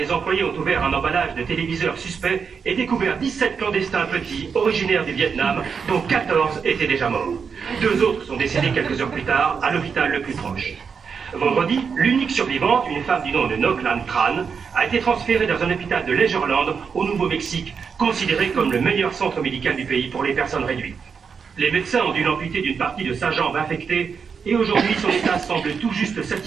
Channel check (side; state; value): left; quieter; 6.1 dB